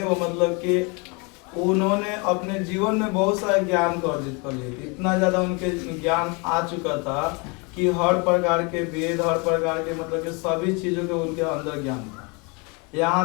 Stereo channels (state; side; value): quieter; right; 30.7 dB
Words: वो मतलब कि उन्होंने अपने जीवन में बहुत सारे ज्ञान को अर्जित कर लिए थे। इतना ज़्यादा उनके ज्ञान आ चुका था कि हर प्रकार के वेद, हर प्रकार के मतलब कि सभी चीज़ों के उनके अंदर ज्ञान था। यहाँ